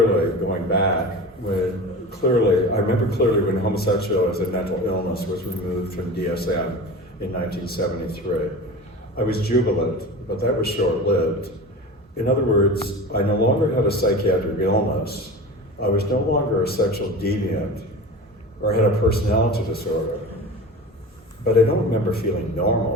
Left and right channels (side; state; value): both; normal; correlation 0.33